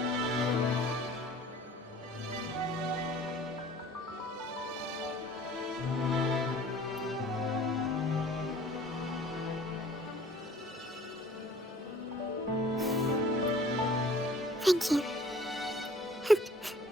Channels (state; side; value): normal; both; correlation 0.51